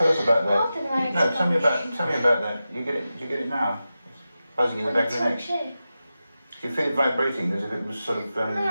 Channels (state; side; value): inverted; both; correlation -0.93